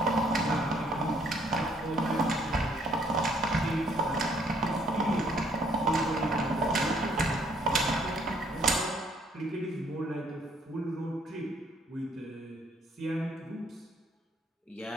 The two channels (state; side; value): normal; both; correlation 0.65